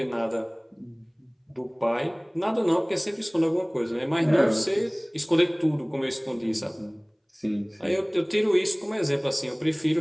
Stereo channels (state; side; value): identical; both; correlation 1.00